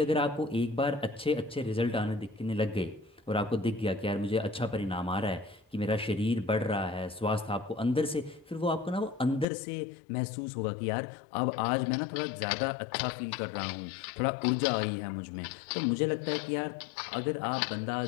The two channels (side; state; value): right; drops out; at 9.5 s